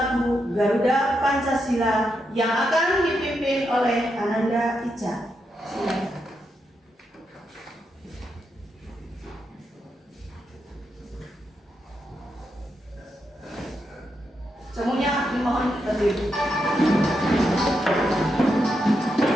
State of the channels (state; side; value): normal; both; correlation 0.83